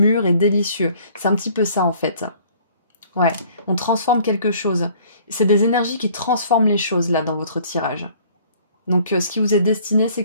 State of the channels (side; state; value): both; inverted; correlation -0.55